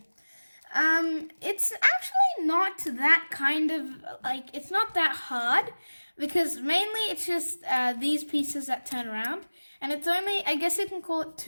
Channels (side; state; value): both; inverted; correlation -1.00